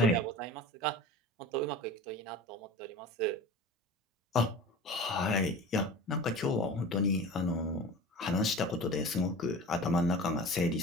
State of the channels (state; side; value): normal; both; correlation 0.36